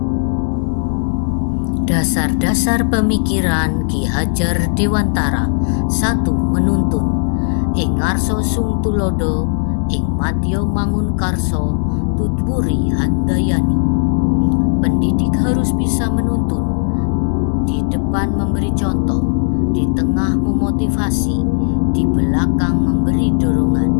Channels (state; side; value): silent; right; 69 dB below the other